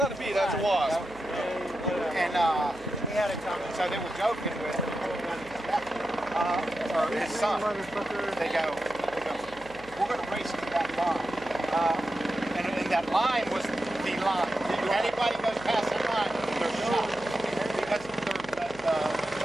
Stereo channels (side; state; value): right; noise; hum, 20 dB below the sound